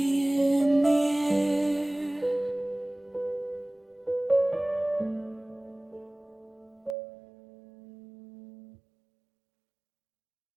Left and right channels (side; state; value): left; drops out; at 7.0 s